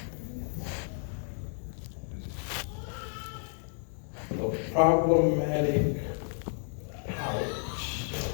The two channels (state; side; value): silent; right; digital silence